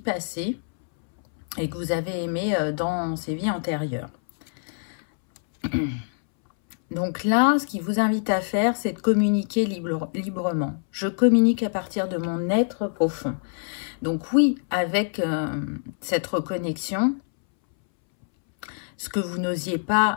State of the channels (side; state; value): right; silent; 62 dB below the other